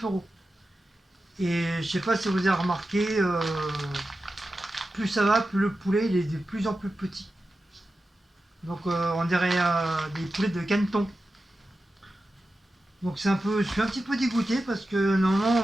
euros. Et je sais pas si vous avez remarqué, plus ça va, plus le poulet il est de plus en plus petit. Donc on dirait des poulets de caneton. Donc je suis un petit peu dégoûté parce que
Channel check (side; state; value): both; normal; correlation 0.92